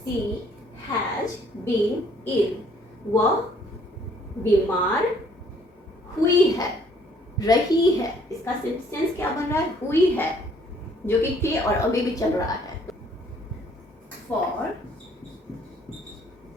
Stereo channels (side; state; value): both; normal; correlation 0.62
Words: हैज बीन इल, वह बीमार हुई है, रही है। इसका सेंटेंस क्या बन रहा है? हुई है, जो कि थी और अभी भी चल रहा है। फॉर